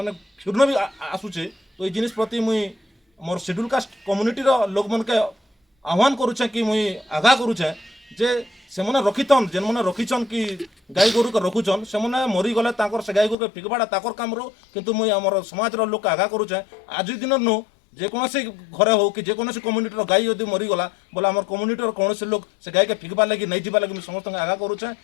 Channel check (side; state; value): right; drops out; at 13.4 s